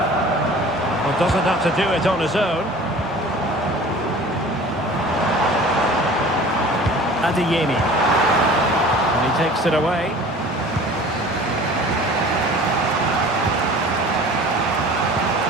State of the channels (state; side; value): normal; both; correlation 0.44